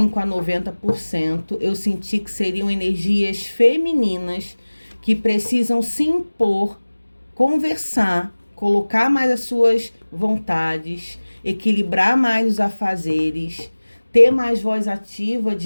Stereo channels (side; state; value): both; inverted; correlation -1.00